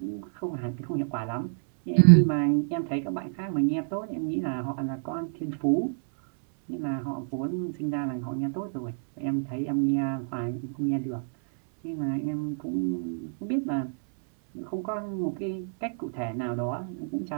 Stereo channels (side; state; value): left; silent; 59 dB below the other